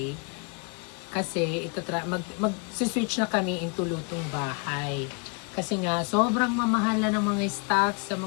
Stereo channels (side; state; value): right; quieter; 35.4 dB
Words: kasi mag-switch na kami into lutong bahay. Kasi nga, sobrang mamahal na ng mga stocks sa